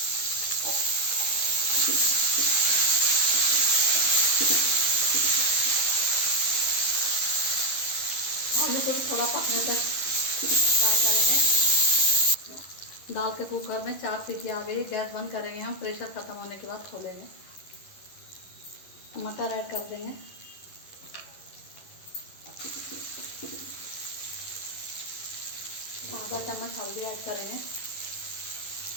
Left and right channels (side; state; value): right; late; 11 ms